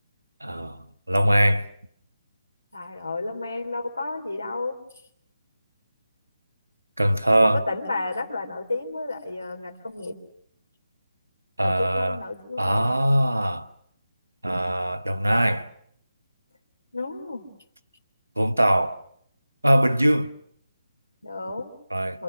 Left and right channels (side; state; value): both; inverted; correlation -0.96